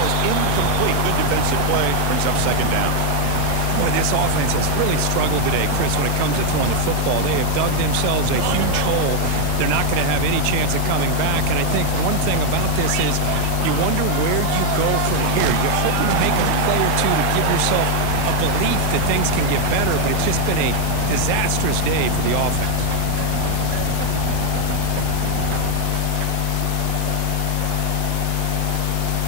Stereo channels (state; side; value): different; both; correlation 0.00